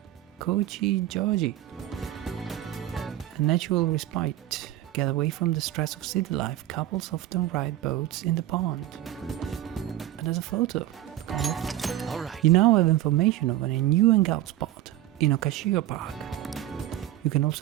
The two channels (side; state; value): left; quieter; 13.6 dB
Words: Kochijoji. A natural respite. Get away from the stress of city life. Couples often ride boats in the pond. And there's a photo. All right. You now have information of a new hangout spot in Okashio Park. You can